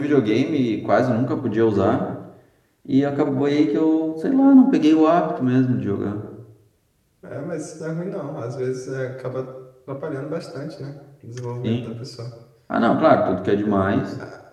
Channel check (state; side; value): identical; both; correlation 1.00